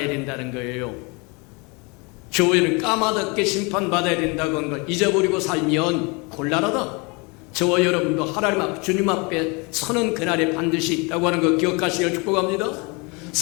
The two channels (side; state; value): right; quieter; 29.4 dB